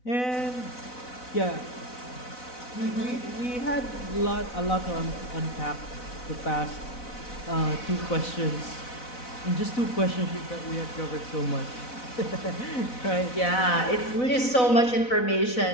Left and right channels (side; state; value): right; late; 4.0 ms